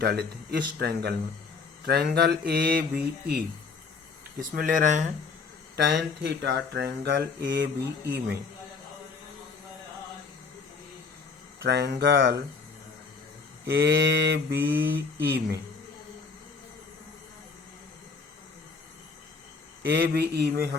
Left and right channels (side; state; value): right; quieter; 4.8 dB